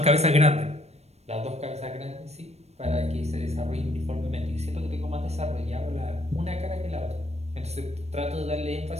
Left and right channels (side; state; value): left; late; 0.31 ms